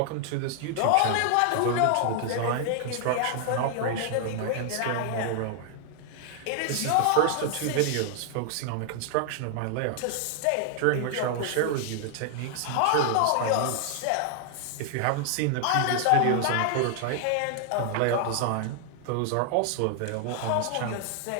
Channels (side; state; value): both; different; correlation 0.00